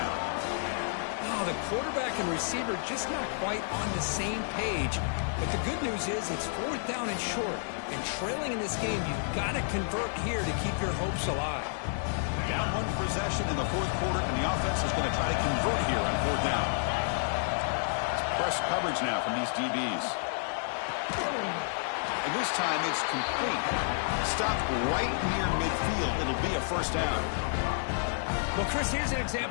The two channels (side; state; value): right; silent; digital silence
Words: The quarterback and receiver just not quite on the same page. But the good news is it's 4th down and short. And trailing in this game, you've got to convert here to keep your hopes alive. Down 1 possession in the 4th quarter, and the offense is going to try to convert here on 4th down. It's press coverage now from these DBs. And this time it's complete. Stopped right near midfield. It'll be a 1st down. Well, Chris, here's an